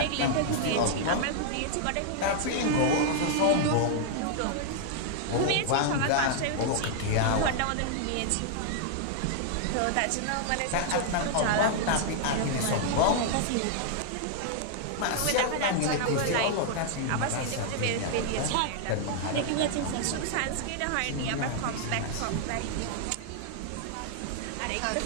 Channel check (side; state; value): both; different; correlation -0.01